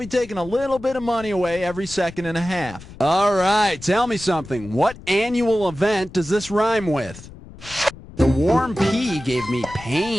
taking a little bit of money away every second and a half. All right, tell me something. What annual event does this rhyme with? The warm pea gave me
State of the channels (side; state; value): left; noise; rumble, 17 dB below the sound